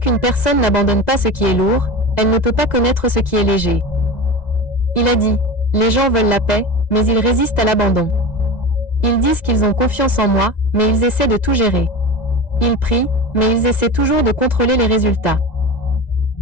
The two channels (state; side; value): late; right; 1.9 ms